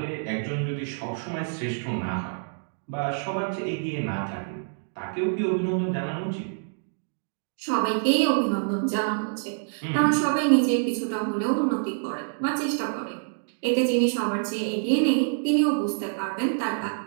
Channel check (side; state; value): left; silent; digital silence